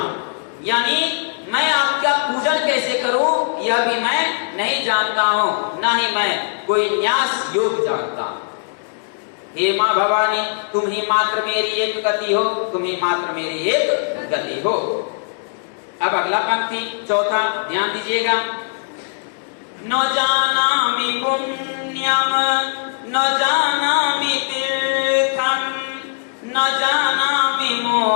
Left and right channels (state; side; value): silent; right; digital silence